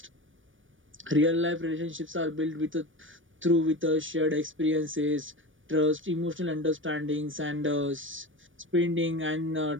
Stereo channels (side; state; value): left; late; 0.57 ms